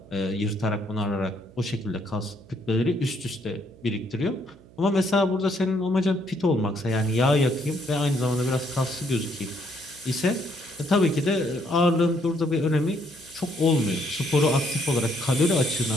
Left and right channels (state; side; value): noise; right; hum, 24 dB below the sound